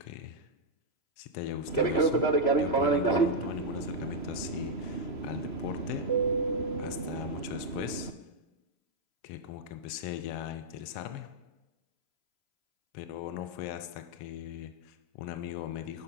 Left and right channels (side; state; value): right; late; 3.1 ms